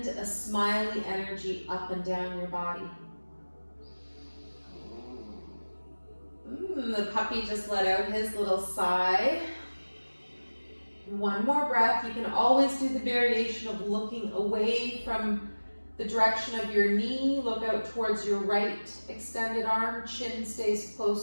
a smiley energy up and down your body. The puppy just let out his little sigh. One more breath. You can always do the variation of looking away from the direction of your knee. Look out towards your right extended arm. Chin stays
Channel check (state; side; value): inverted; both; correlation -1.00